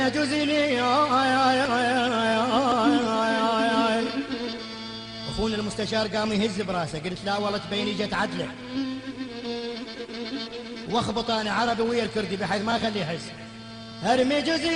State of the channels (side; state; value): both; identical; correlation 1.00